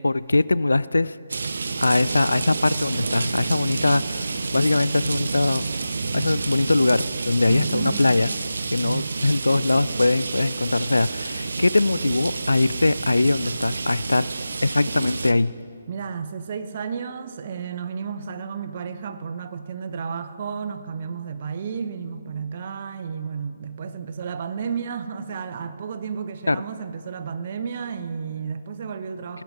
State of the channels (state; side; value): inverted; both; correlation -0.94